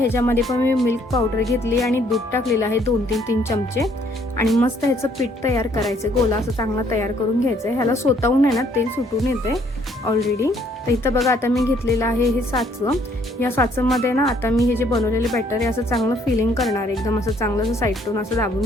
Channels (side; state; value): both; normal; correlation 0.65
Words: पण मी मिल्क पावडर घेतली आणि दूध टाकलेलं आहे 2-3 चमचे। आणि मस्त ह्याचं पीठ तयार करायचं, गोला असं चांगला तयार करून घ्यायचं। ह्याला स्वतःहून आहे ना तेल सुटून येते ऑलरेडी। तर इथं बघा, आता मी घेतलेलं आहे हे साचं। या साचंमध्ये ना आता मी हे जे बनवलेले बॅटर आहे असं चांगलं फिलिंग करणार आहे, एकदम असं चांगलं असं साईडतून असं दाबून